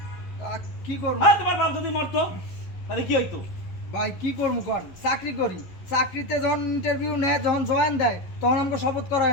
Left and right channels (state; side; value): late; right; 11 ms